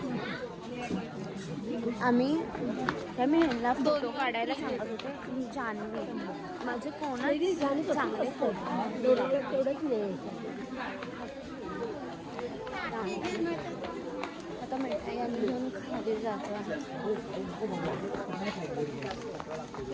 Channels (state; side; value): identical; both; correlation 1.00